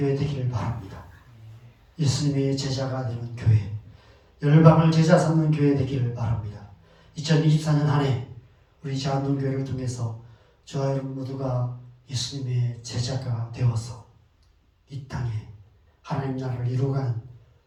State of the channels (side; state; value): both; identical; correlation 1.00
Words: 되기를 바랍니다. 예수님의 제자가 되는 교회, 열방을 제자 삼는 교회 되기를 바랍니다. 2024년 한 해 우리 자한동교회를 통해서 저와 여러분 모두가 예수님의 제자가 되어서 이 땅에 하나님 나라를 이루어가는